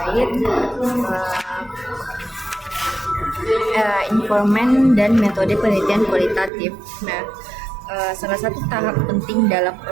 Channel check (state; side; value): drops out; left; at 6.5 s